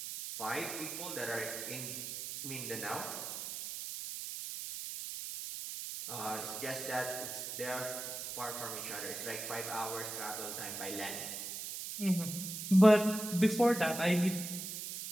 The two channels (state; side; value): noise; right; hiss, 6 dB below the sound